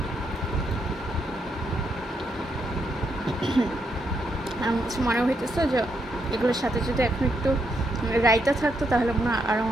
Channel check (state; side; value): normal; both; correlation 0.78